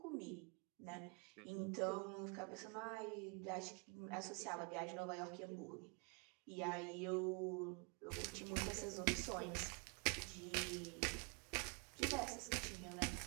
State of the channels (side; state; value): left; quieter; 33.8 dB